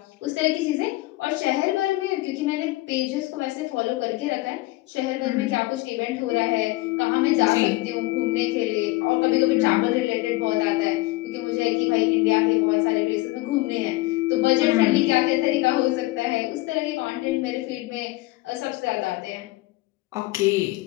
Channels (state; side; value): quieter; right; 20.4 dB